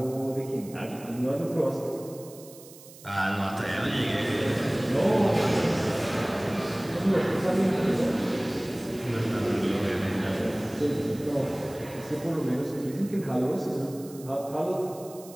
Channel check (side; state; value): right; noise; hiss, 20 dB below the sound